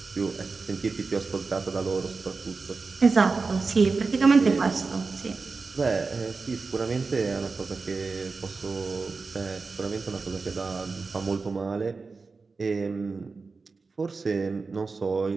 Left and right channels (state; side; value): quieter; left; 4.3 dB